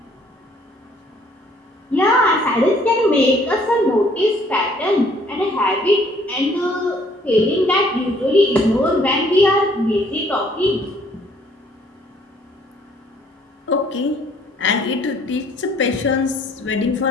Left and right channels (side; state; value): both; normal; correlation 0.61